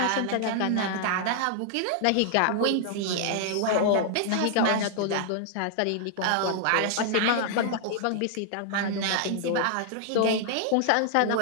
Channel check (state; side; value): different; both; correlation -0.01